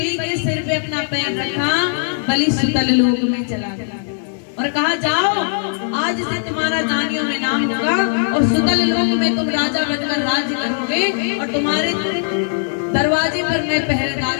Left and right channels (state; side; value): silent; right; 58 dB below the other